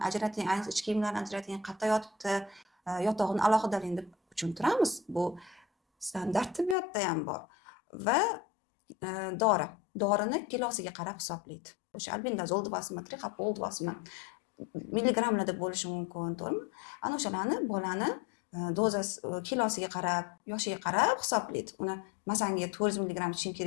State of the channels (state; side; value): drops out; right; at 6.8 s